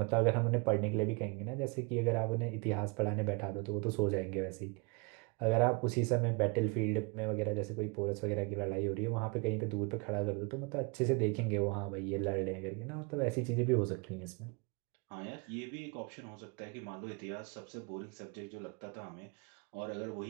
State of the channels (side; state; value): left; quieter; 31.3 dB